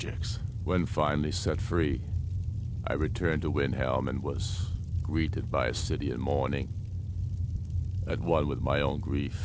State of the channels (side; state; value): both; identical; correlation 1.00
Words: When finally set free, I returned to Windhelm and was greeted by a city in mourning, at one with my own